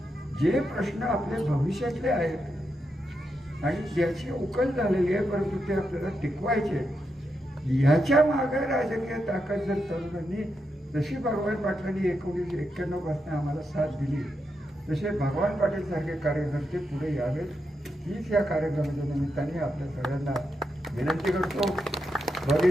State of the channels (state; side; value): normal; both; correlation 0.84